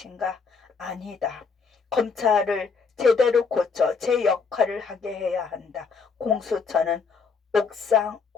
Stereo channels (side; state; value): right; quieter; 5.1 dB